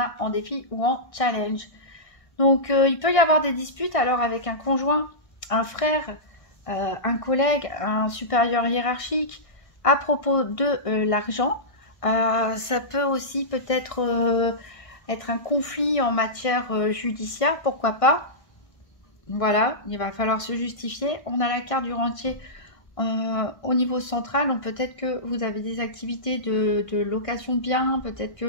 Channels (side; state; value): right; late; 1.6 ms